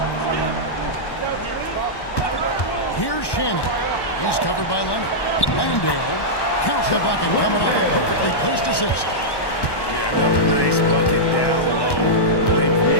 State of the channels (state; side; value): late; right; 1.1 ms